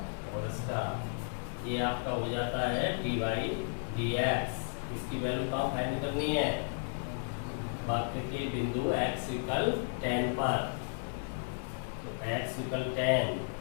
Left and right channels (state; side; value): silent; right; 55 dB below the other